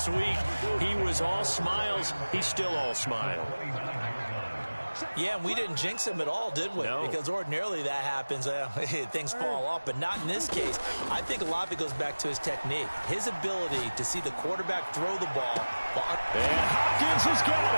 week. He was all smiles. He's still all smile. Yeah, and we didn't jinx him at all, did we? No. Because ordinarily that happens. Things fall off, but not in this case. I think a lot of it goes back to his technique, his ability to see the quarterback throw the ball. And Hopkins has got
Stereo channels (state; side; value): inverted; both; correlation -1.00